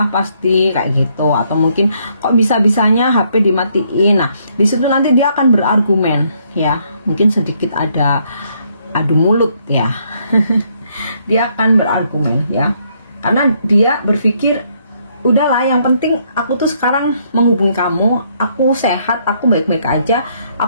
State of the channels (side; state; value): both; inverted; correlation -0.71